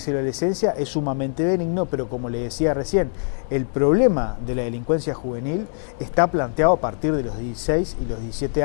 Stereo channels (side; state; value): right; silent; 64 dB below the other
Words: y la Adolescencia es sumamente benigno, pero como le decía recién, el problema de la delincuencia juvenil está planteado a partir de los 16 y los 17